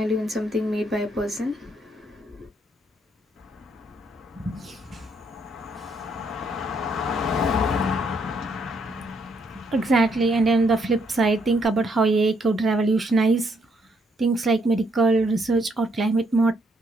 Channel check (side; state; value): both; normal; correlation 0.72